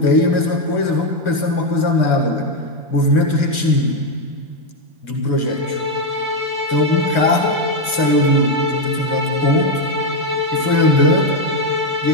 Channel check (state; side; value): late; right; 2.2 ms